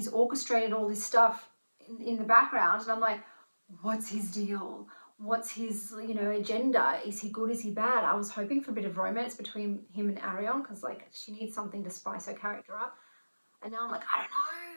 orchestrated all this stuff in the background. And I'm like, what's his deal? What's his, you know, agenda? Is he good? Is he bad? I was hoping for a bit of romance between him and Arion because, like, she needs something to spice her character up. And now I'm like, I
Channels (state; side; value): inverted; both; correlation -1.00